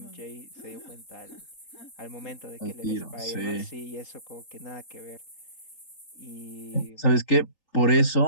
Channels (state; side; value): late; right; 3.8 ms